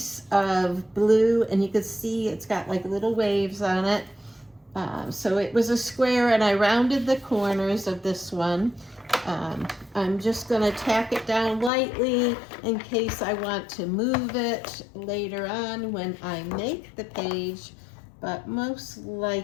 of blue, and you could see it's got like little waves on it. So it was a square, and I rounded the corners of this one. I'm just going to tack it down lightly in case I want to move it later on when I make the page, but most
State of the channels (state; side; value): drops out; right; at 11.7 s